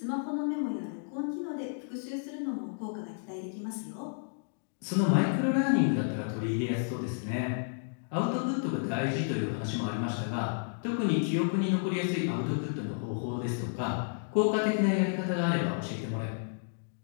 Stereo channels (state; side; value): silent; right; digital silence